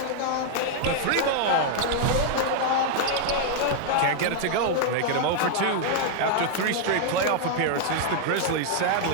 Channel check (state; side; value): different; both; correlation 0.00